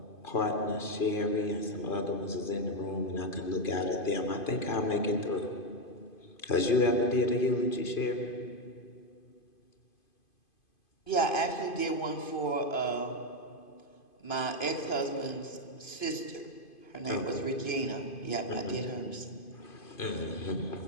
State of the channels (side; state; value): right; late; 2.5 ms